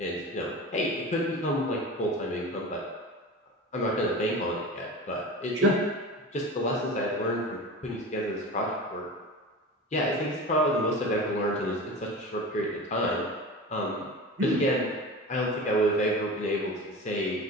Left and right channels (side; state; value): both; normal; correlation 0.32